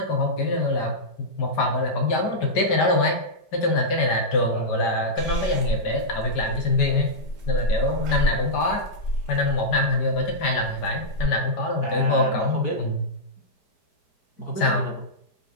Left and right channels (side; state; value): right; late; 5.1 ms